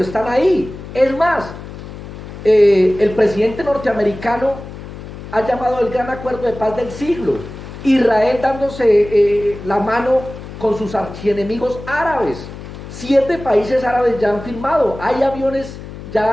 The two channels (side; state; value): left; noise; hum, 12 dB below the sound